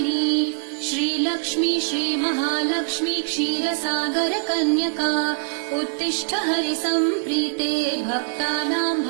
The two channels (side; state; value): left; silent; digital silence